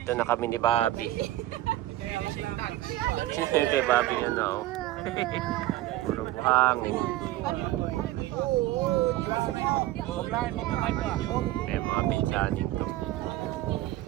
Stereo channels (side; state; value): left; quieter; 15.6 dB